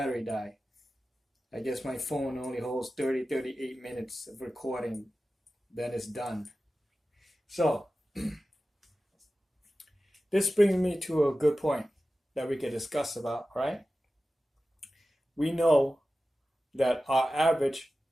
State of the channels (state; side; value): normal; both; correlation 0.94